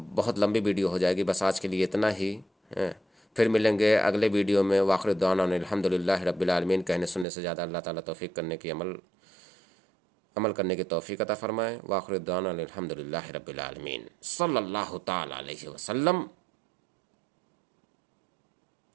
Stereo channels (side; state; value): left; drops out; at 7.2 s